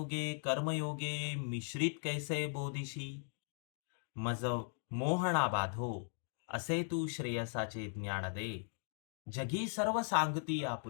कर्मयोगे मिश्रित कैसे बोधिशी? मज मोहना बाधो, असे तू श्रेयसाचे ज्ञान दे. जगी सर्व सांगती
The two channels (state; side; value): silent; right; digital silence